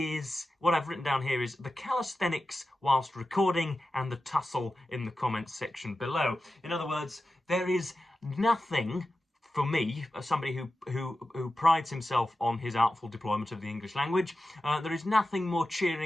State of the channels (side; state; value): both; normal; correlation 0.93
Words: what I've written down here is the calisthenics whilst recording and the tussle in the comments section below. In other words, there is nothing for me, somebody who prides himself on his artful deployment of the English language, there is nothing more